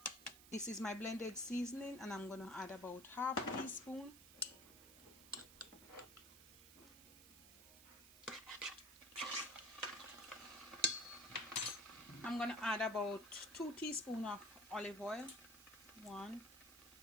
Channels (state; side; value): noise; right; hiss, 17 dB below the sound